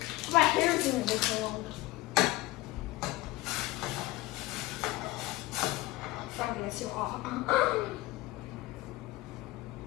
My hair is doing it so long. Probably that's too hot.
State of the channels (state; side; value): quieter; right; 19.4 dB